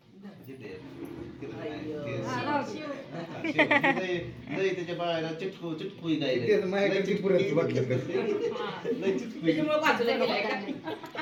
त्याच्या बाहेर चिटकू माझ्याकडे पुरेच वाटलं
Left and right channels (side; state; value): both; identical; correlation 1.00